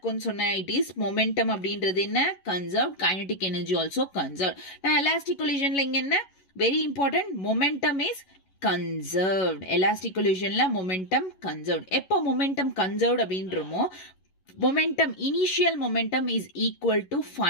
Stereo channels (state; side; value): late; right; 11 ms